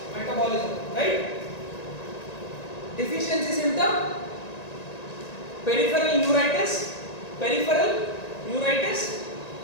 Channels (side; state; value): right; late; 1.9 ms